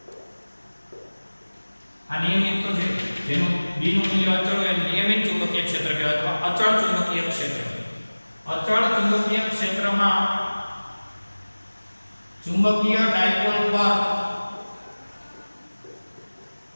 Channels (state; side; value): inverted; both; correlation -1.00